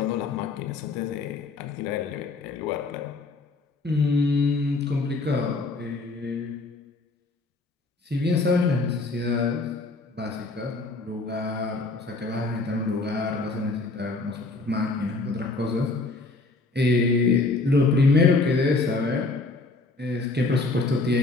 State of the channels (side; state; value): right; quieter; 3.5 dB